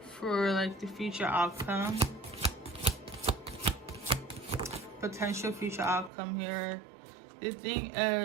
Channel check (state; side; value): drops out; left; at 6.1 s